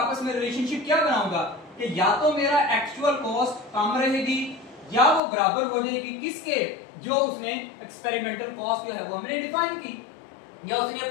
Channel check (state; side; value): drops out; right; at 5.2 s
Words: में रिलेशनशिप क्या बनाऊंगा कि या तो मेरा एक्चुअल कॉस्ट कम रहेगी या वो बराबर हो जाएगी किसके, जो उसने एक्सपेरिमेंटल कॉस्ट जो है वो हमने डिफाइन की, या उसने